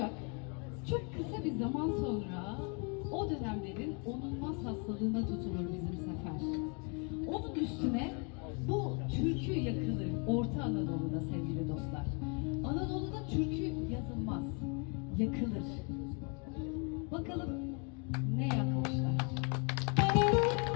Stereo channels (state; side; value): quieter; right; 35.7 dB